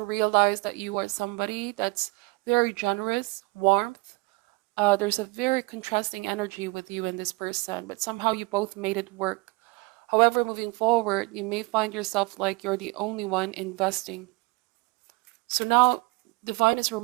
realized that you are somebody that's very generous, warmth. There's a very contrasting energy with you and this person, but somehow you both made it work. However, moving forward, you may find yourself like you're the only one investing. So now, Divine is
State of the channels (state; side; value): quieter; left; 24.7 dB